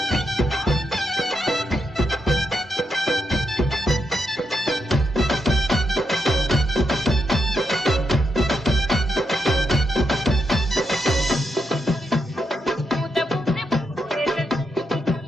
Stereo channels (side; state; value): both; normal; correlation 0.82